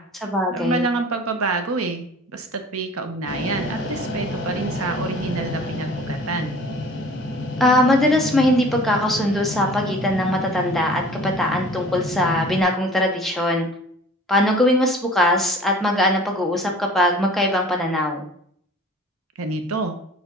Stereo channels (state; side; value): normal; both; correlation 0.46